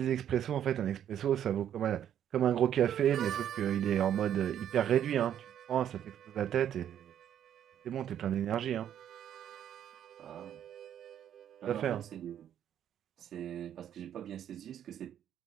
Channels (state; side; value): quieter; left; 10.1 dB